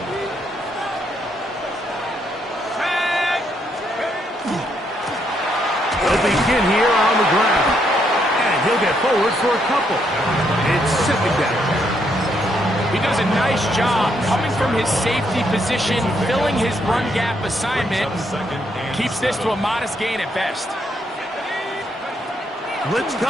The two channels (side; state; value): both; normal; correlation 0.75